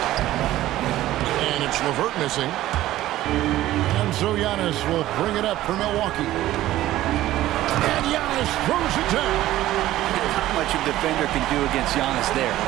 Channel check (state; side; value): quieter; left; 14.9 dB